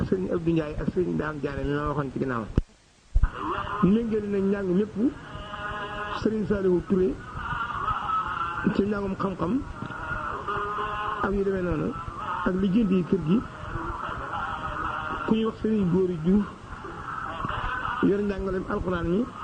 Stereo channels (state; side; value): identical; both; correlation 1.00